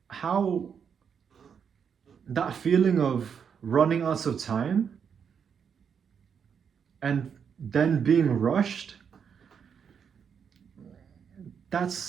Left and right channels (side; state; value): left; quieter; 7.1 dB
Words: How that feeling of running out of time and then being rushed,